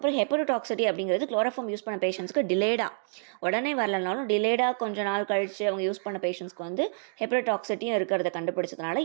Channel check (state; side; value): silent; left; digital silence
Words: ஹெப்படோடாக்சிட்டி அப்படிங்கிறது குளோரோஃபார்ம் யூஸ் பண்ண பேஷண்ட்ஸ்க்கு டிலேடாக, உடனே வரலனாலும் டிலேடாக கொஞ்சம் நாள் கழித்து அவங்க யூஸ் பண்ண பேஷண்ட்ஸ்க்கு வந்து ஹெப்படோடாக்சிட்டியும் இருக்கிறத கண்டுபிடிச்சதுனால